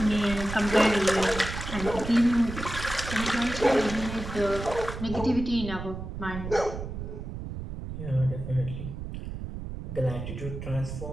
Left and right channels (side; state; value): right; noise; rumble, 8 dB below the sound